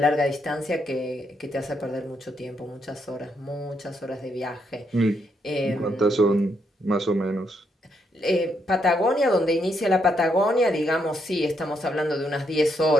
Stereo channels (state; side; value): normal; both; correlation 0.77